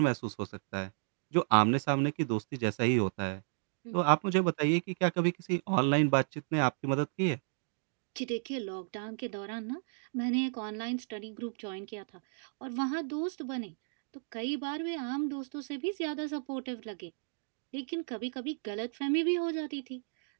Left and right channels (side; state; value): left; silent; digital silence